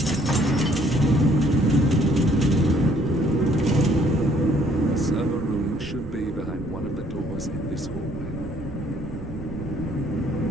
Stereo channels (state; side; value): noise; right; rumble, 13 dB below the sound